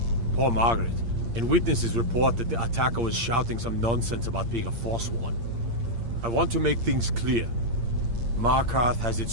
poor Margaret, and witnesses report that the attacker was shouting some nonsense about being a Forsworn. I want to make things clear. Markarth has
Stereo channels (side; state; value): left; late; 8.7 ms